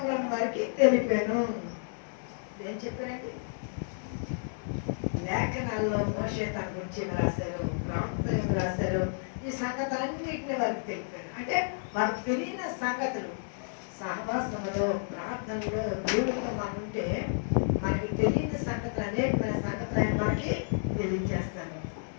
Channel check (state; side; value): silent; right; digital silence